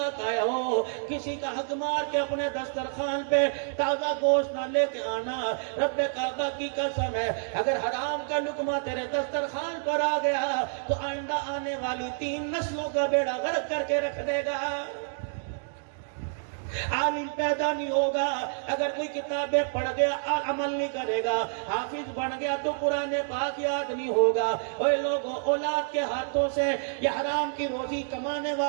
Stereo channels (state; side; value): silent; left; digital silence